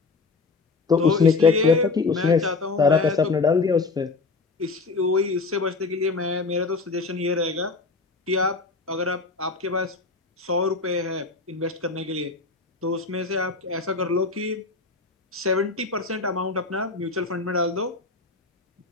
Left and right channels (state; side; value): quieter; right; 4.0 dB